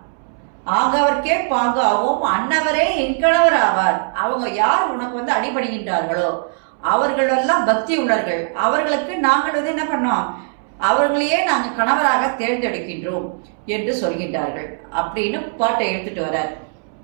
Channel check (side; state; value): left; silent; 66 dB below the other